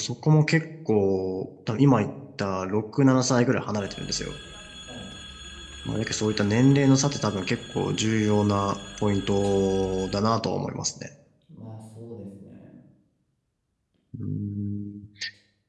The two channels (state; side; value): identical; both; correlation 1.00